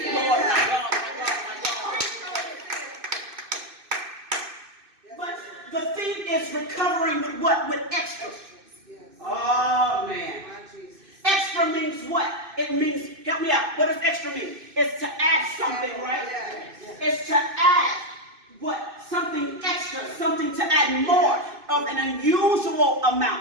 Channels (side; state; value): left; late; 2.6 ms